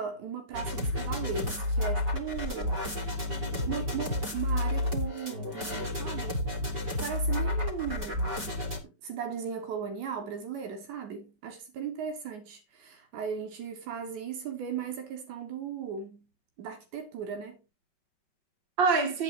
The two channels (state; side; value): late; left; 5.2 ms